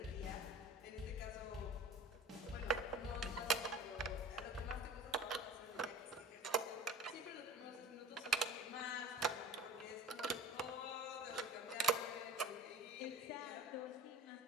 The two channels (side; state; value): both; normal; correlation 0.39